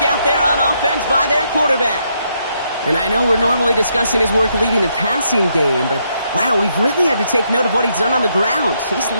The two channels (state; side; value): inverted; both; correlation -0.76